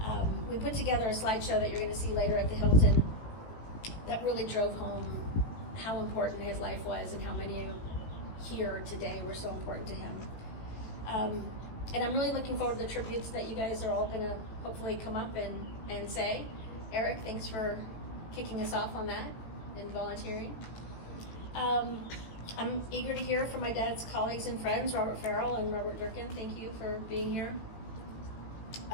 We put together a slideshow that you're going to see later at the Hilton that really drove home how important his life was and how many here today were so important to him. And I'm really looking forward to the tributes that you guys are all going to hopefully come up and say. Eric, thanks for kicking us off on that and volunteering. I'm eager to hear from my dad's colleagues and friends, Robert Farrell and Robert Durkin. Thank you for being here.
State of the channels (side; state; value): right; late; 17 ms